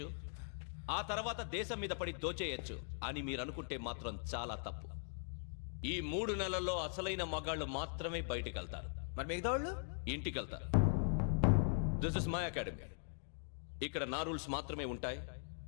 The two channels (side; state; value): right; silent; digital silence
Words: ఆ తర్వాత దేశం మీద పడి దోచేయచ్చు అని మీరు అనుకుంటే మాత్రం చాలా తప్పు. ఈ 3 నెలల్లో అసలైన మగాళ్ళు మాత్రమే బయటికి వెళ్తారు. మరి మిగతా వాళ్ళు ఇంటికి వెళ్తారు. This is my academy. ఇక్కడ నా రూల్స్ మాత్రమే ఉంటాయి.